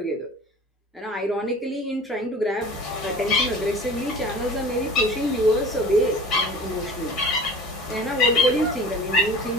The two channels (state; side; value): normal; both; correlation 0.41